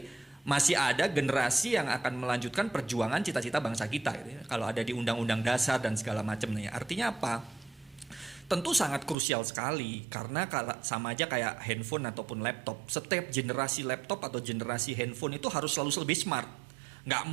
masih ada generasi yang akan melanjutkan perjuangan cita-cita bangsa kita gitu ya. Kalau ada di undang-undang dasar dan segala macamnya. Artinya apa? Tentu sangat krusial sekali karena sama aja kayak handphone ataupun laptop. Setiap generasi laptop atau generasi handphone itu harus selalu lebih smart. Nggak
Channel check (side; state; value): left; drops out; at 9.2 s